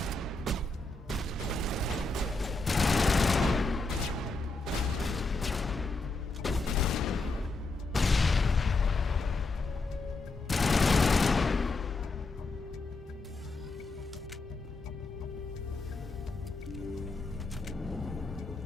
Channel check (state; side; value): quieter; right; 3.4 dB